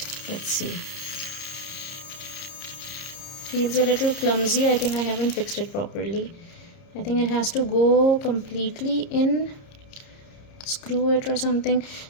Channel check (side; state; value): right; late; 30 ms